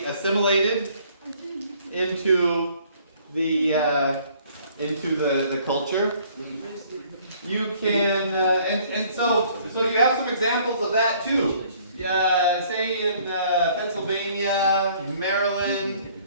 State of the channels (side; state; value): both; inverted; correlation -0.59